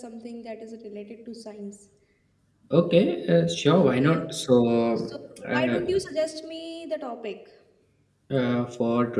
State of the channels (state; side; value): identical; both; correlation 1.00